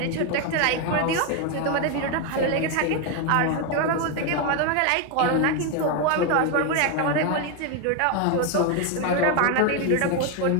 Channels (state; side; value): different; both; correlation 0.01